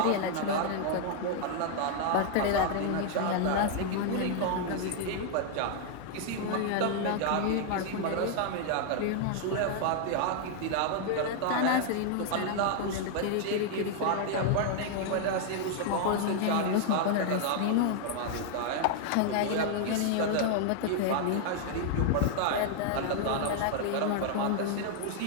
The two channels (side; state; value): both; different; correlation 0.00